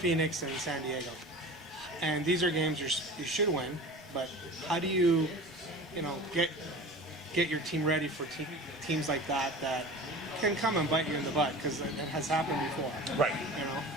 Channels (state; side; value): normal; both; correlation 0.37